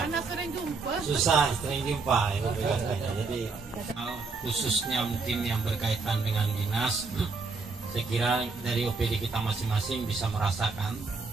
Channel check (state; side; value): quieter; left; 4.2 dB